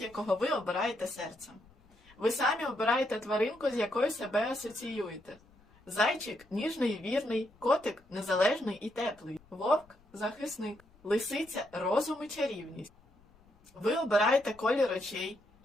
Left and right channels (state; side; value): noise; left; rumble, 29 dB below the sound